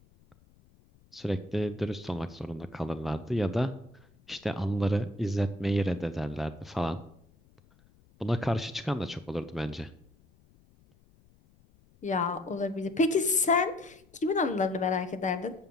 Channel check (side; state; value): left; noise; rumble, 30 dB below the sound